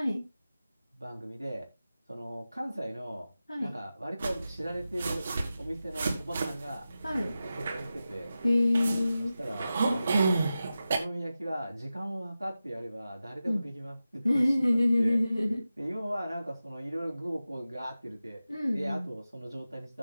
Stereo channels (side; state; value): both; inverted; correlation -0.93